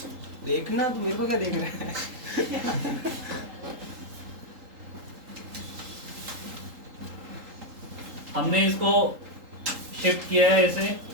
देखना तो मेरे को क्या देख रहा है। हमने इसको शिफ्ट किया है ऐसे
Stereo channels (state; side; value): late; left; 3.8 ms